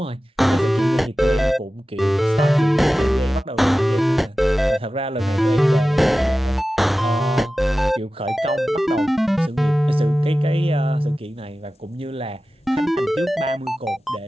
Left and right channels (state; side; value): normal; both; correlation 0.95